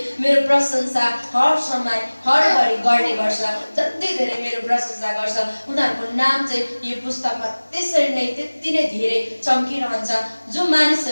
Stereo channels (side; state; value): both; inverted; correlation -1.00